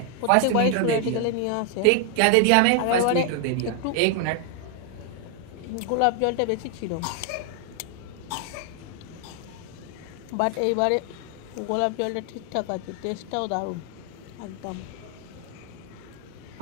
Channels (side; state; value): both; different; correlation 0.00